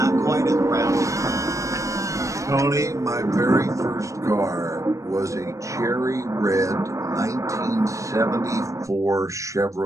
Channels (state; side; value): late; left; 0.15 ms